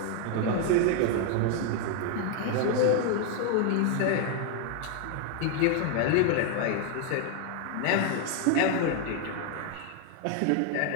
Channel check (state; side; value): different; both; correlation 0.01